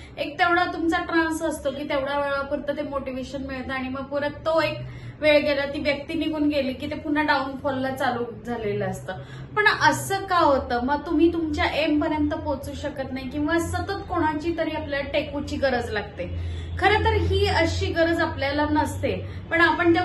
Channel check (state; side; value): identical; both; correlation 1.00